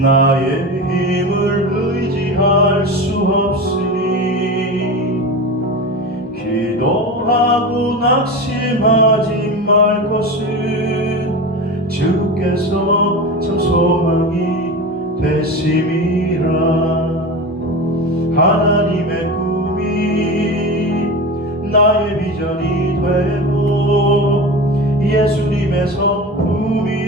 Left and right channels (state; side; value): normal; both; correlation 0.27